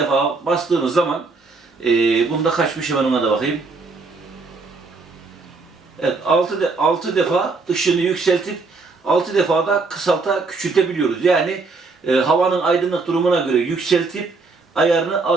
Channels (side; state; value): left; quieter; 4.0 dB